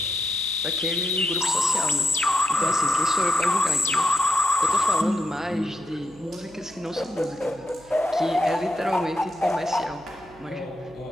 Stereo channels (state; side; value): noise; right; hum, 25 dB below the sound